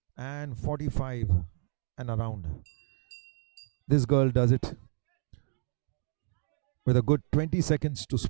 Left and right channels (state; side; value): silent; left; 57 dB below the other